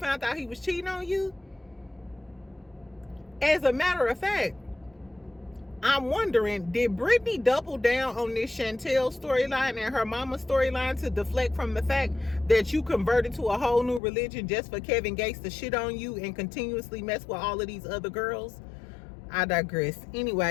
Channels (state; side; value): drops out; right; at 14.0 s